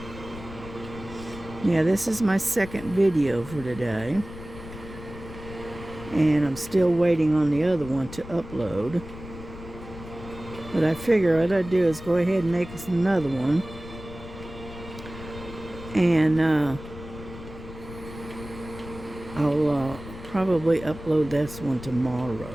Yeah, this is my second video for today. And I'm still waiting on the other one to upload. But I figure what I'd do is go ahead and make us another one. And I'll probably upload this one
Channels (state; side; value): noise; left; rumble, 14 dB below the sound